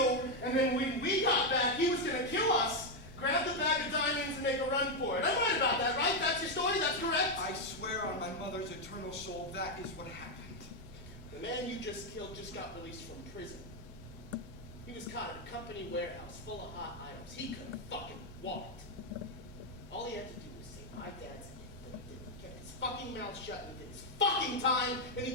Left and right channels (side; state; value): both; normal; correlation 0.03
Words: and then when we got back, he was going to kill us, grab the bag of diamonds, and make a run for it. I'm right about that, right? That's your story? That's correct? I swear on my mother's eternal soul, that is what happened. The man you just killed just got released from prison. He was caught at a company warehouse full of hot items. He couldn't fucking walked. All he had to do was say, my dad's in, but he didn't. He kept his fucking mouth shut and he did his fucking time, and he